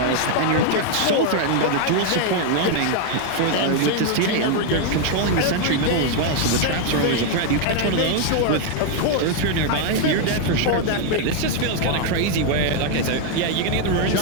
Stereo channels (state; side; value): different; both; correlation 0.00